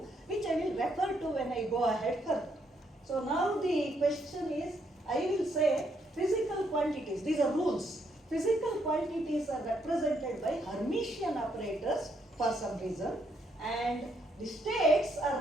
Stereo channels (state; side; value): normal; both; correlation 0.74